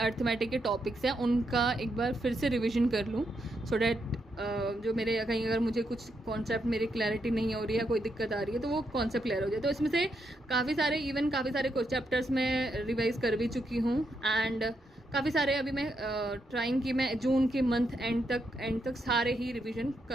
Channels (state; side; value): normal; both; correlation 0.80